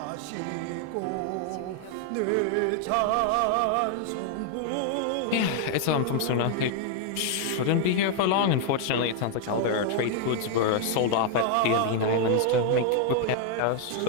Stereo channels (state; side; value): different; both; correlation 0.00